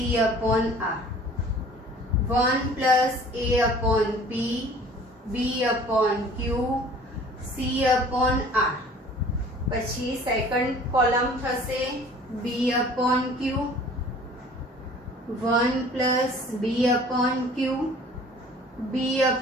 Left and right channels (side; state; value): both; normal; correlation 0.49